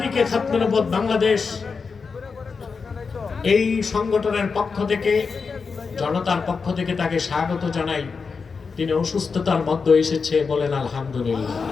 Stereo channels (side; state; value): right; quieter; 5.1 dB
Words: খাতমে নবুওয়াত বাংলাদেশ এই সংগঠনের পক্ষ থেকে, জনতার পক্ষ থেকে তাকে স্বাগত জানাই। তিনি অসুস্থতার মধ্যে এসেছে, বলেন আলহামদুলিল্লাহ।